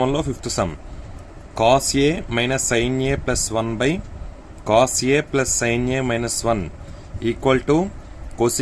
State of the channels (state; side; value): identical; both; correlation 1.00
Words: 5th sum cos a minus sin a plus 1 by cos a plus sin a minus 1 equal to